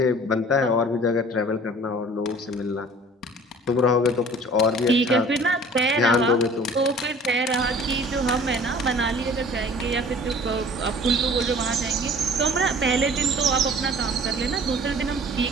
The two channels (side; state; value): both; normal; correlation 0.48